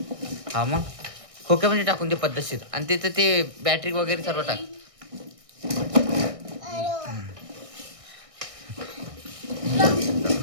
हा मग खोक्यामध्ये टाकून दे पद्धतशीर. आणि तिथं ते बॅटरी वगैरे सर्व टाक.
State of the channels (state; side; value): late; left; 1.6 ms